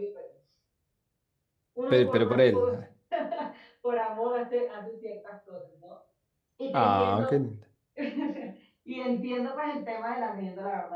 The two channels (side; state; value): both; identical; correlation 1.00